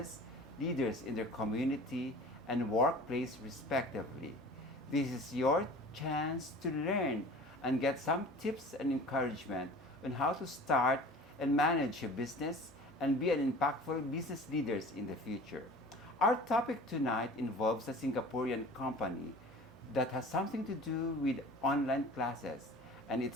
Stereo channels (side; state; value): both; normal; correlation 0.43